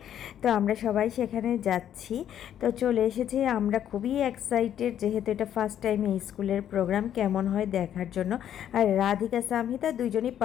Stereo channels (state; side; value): quieter; right; 10.3 dB